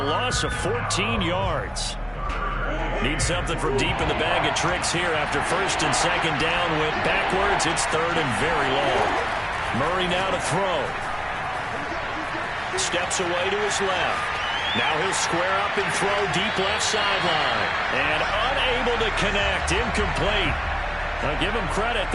loss of 14 yards. Need something from deep in the bag of tricks here after 1st and 2nd down went backwards. It's 3rd and very long. Murray now to throw. Steps away to his left. Now he'll square up and throw deep left sideline. And unable to connect. Incomplete. I'll give them credit.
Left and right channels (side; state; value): both; identical; correlation 1.00